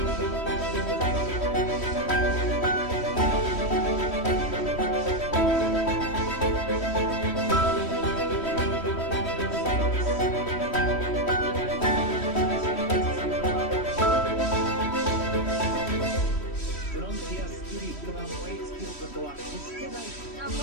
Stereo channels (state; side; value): late; right; 3.1 ms